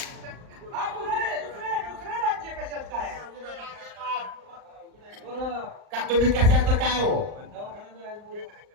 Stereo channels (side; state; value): left; late; 39 ms